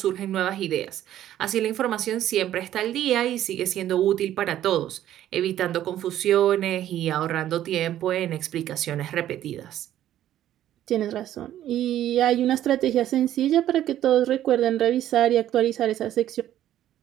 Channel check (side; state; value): left; quieter; 12.2 dB